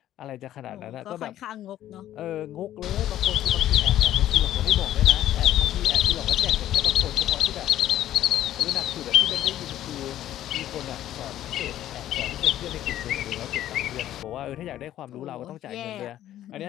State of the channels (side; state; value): right; quieter; 12.5 dB